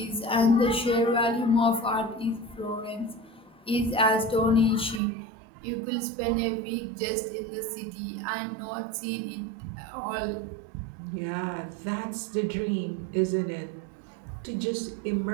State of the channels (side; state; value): left; drops out; at 5.0 s